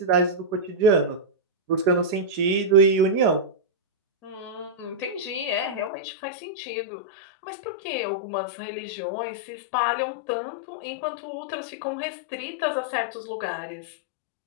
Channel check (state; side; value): drops out; right; at 5.9 s